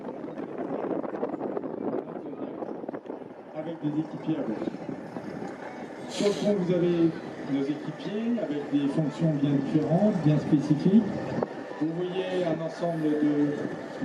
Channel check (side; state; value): both; identical; correlation 1.00